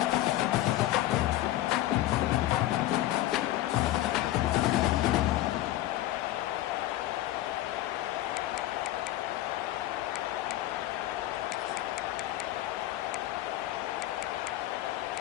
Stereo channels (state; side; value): quieter; right; 14.9 dB